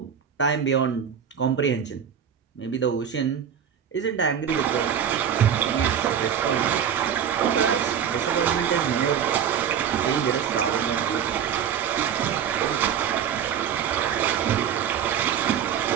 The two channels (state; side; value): quieter; left; 8.4 dB